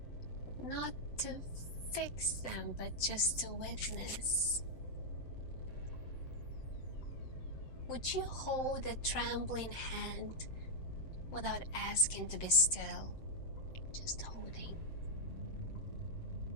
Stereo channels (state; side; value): late; right; 7.7 ms